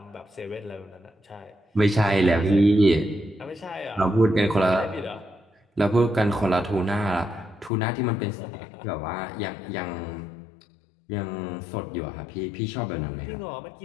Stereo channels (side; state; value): right; drops out; at 7.7 s